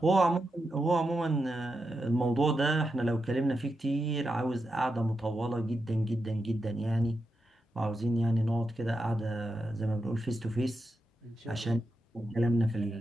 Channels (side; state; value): both; normal; correlation 0.87